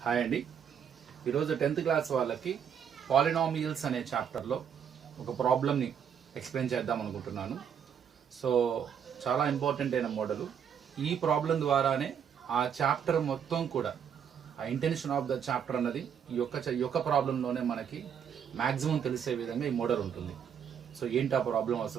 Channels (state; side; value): quieter; left; 8.0 dB